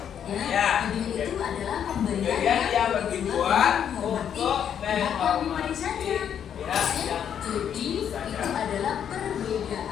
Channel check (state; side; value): quieter; right; 8.8 dB